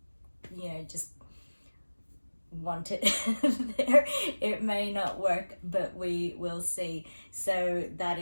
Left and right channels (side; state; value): both; inverted; correlation -1.00